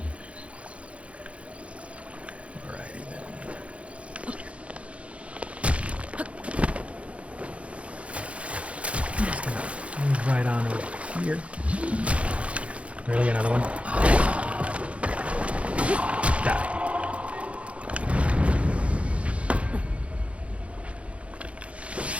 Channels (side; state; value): left; late; 0.062 ms